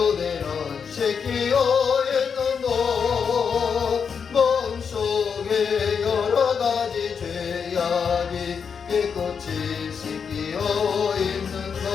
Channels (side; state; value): right; quieter; 6.4 dB